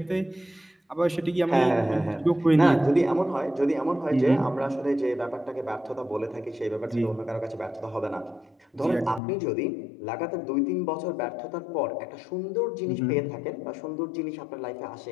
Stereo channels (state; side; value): drops out; right; at 9.2 s